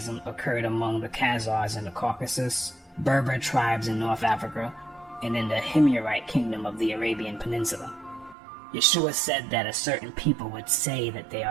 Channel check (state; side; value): drops out; left; at 8.3 s